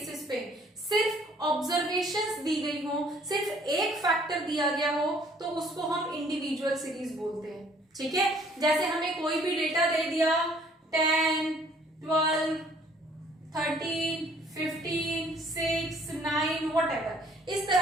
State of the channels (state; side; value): normal; both; correlation 0.59